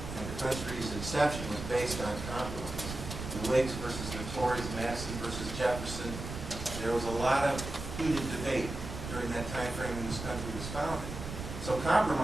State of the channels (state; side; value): noise; right; rumble, 7 dB below the sound